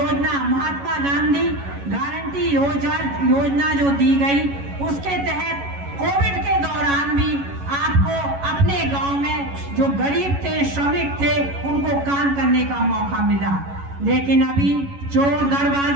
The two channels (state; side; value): late; left; 11 ms